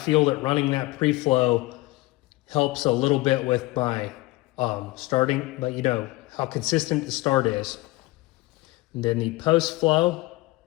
that running that pre-flow helps a little bit with my starting, but you know how consistent the start is. And then the post-flow,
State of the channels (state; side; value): quieter; right; 20.5 dB